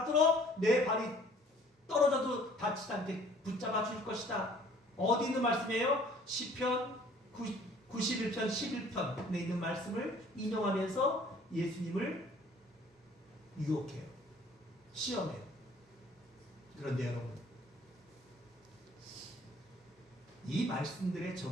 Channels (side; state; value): both; normal; correlation 0.55